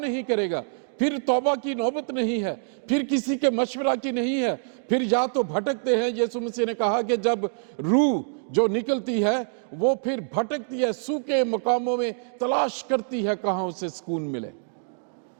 करेगा, फिर तौबा की नौबत नहीं है, फिर किसी के मशवरा की नहीं है, फिर या तो भटकते हैं। यीशु मसीह ने कहा कि जब रूह जो निकलती है वो फिर भटकती है, सूखे मकामों में तलाश करती है कहां उसे सुकून मिले।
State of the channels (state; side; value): silent; left; digital silence